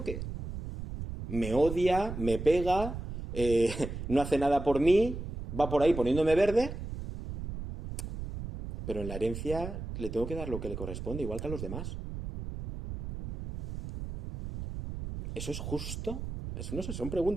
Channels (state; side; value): noise; right; rumble, 7 dB below the sound